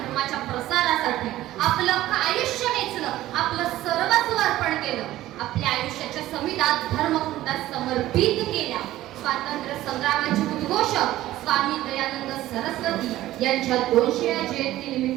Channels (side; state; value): left; quieter; 15.1 dB